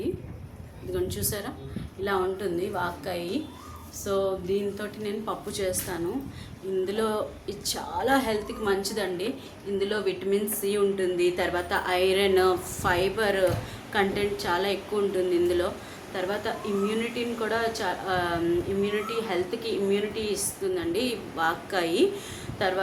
ఇదిగోండి, చూసారా? ఇలా ఉంటుంది వాక్కాయ. సో దీంతో నేను పప్పు చేస్తాను. ఇందులో ఇది చాలా హెల్త్కి మంచిదండి. ఇందులో విటమిన్ సి ఉంటుంది, తర్వాత ఐరన్, ఫైబర్ కంటెంట్ చాలా ఎక్కువ ఉంటుంది ఇందులో. తర్వాత ఇమ్యూనిటీని కూడా హెల్త్కి ఇమ్యూనిటీ ఇస్తుందండి ఈ వాక్కాయ.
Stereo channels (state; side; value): identical; both; correlation 1.00